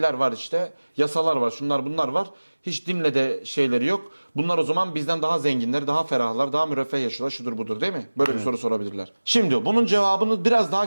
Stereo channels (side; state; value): both; inverted; correlation -1.00